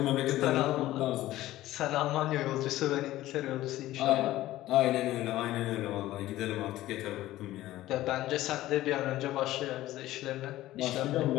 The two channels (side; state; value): right; quieter; 15.5 dB